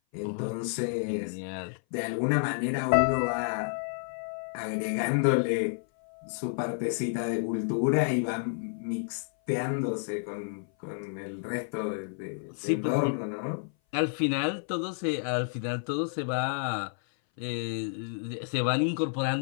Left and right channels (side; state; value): right; silent; 56 dB below the other